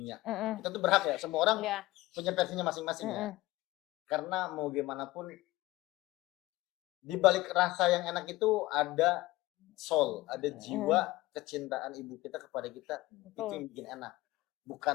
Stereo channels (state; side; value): quieter; right; 18.8 dB